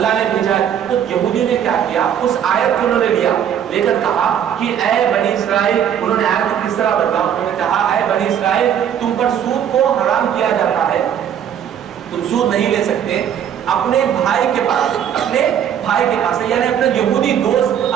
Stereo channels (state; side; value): quieter; left; 9.2 dB